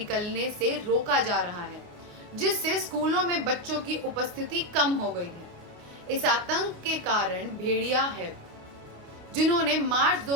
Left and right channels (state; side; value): late; left; 29 ms